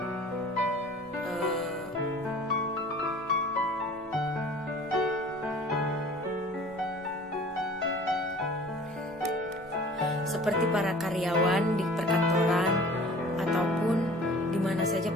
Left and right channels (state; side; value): normal; both; correlation 0.46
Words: seperti para karyawan di perkantoran ataupun di mana saja